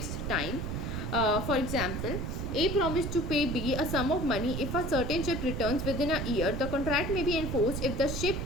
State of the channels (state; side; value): noise; right; rumble, 3 dB below the sound